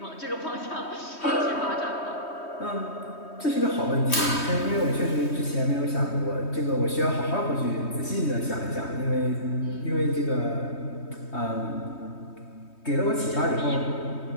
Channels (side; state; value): right; late; 3.2 ms